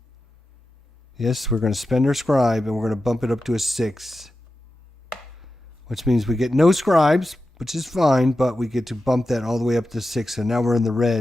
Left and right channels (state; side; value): normal; both; correlation 0.92